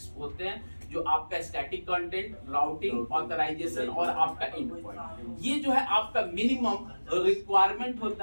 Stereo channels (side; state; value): both; inverted; correlation -1.00